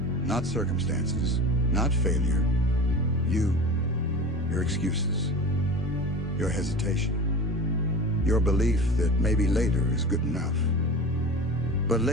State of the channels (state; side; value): normal; both; correlation 0.33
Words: not circumstances, not failure. Your excuses, your hesitation, your belief that maybe later is good enough. But